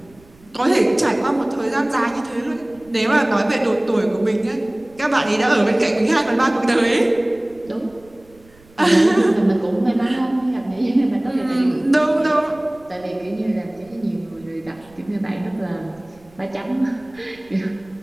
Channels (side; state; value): right; noise; rumble, 27 dB below the sound